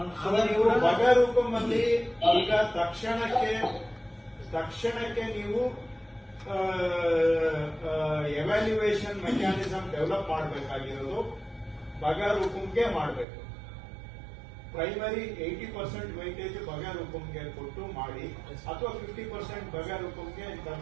ನೀವು ಬಗಾರುಕುಂ ಅಲ್ಲಿ ಈಗ ತಕ್ಷಣಕ್ಕೆ ನೀವು ಎವ್ಯಾಲ್ಯೂಯೇಷನ್ ಮೆಕ್ಯಾನಿಸಮ್ ಡೆವಲಪ್ ಮಾಡಬೇಕಾಗಿರೋದು ಬಗಾರುಕುಂಗೆ ಮಾಡಬೇಕು. ಪ್ರೈಮರಿ 80% ವೈಟೇಜ್ ಬಗಾರುಕುಂಗೆ ಕೊಟ್ಟು ಮಾಡಿ, ಅಥವಾ 50% ಬಗಾರುಕುಂಗೆ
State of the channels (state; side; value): drops out; left; at 13.2 s